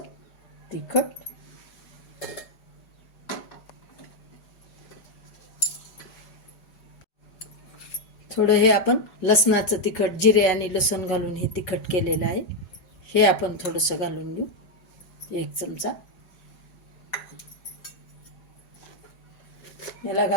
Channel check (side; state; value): right; late; 5.4 ms